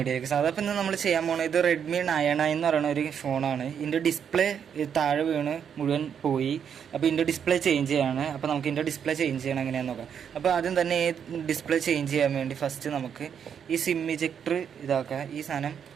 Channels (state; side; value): quieter; left; 7.9 dB